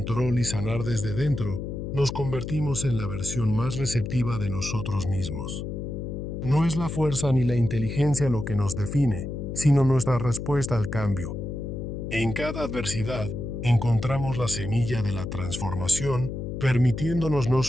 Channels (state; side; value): noise; left; hum, 6 dB below the sound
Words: y sanar desde dentro, nos convertimos en la versión más receptiva de nosotros mismos. No es la fuerza ni la inteligencia lo que nos define, sino nuestra respuesta al cambio. En cada adversidad, encontramos la semilla de la transformación, permitiéndonos no